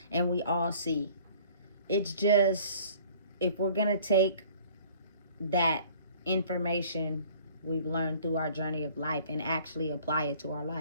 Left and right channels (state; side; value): inverted; both; correlation -0.52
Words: and we all see. It's just, if we're going to take that information we've learned through our journey of life and actually apply it to our